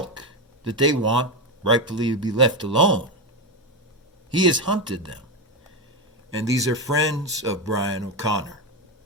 that they want rightfully to be left alone. He has hunted them. And these are friends of Brian O'Connor.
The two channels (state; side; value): normal; both; correlation 0.12